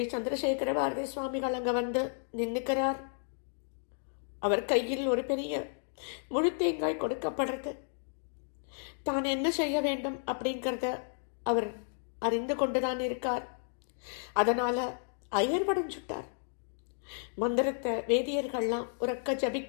சந்திரசேகர பாரதி சுவாமிகள் அங்க வந்து நின்னுக்கிறார். அவர் கையில் ஒரு பெரிய முழு தேங்காய் கொடுக்கப்படுறது. தான் என்ன செய்ய வேண்டும் அப்படிங்கிறத அவர் அறிந்து கொண்டுதான் இருக்கார். அதனால அயர்வடைஞ்சுட்டார். மந்திரத்தை வேதியர்கள்லாம் உறக்க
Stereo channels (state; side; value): silent; right; digital silence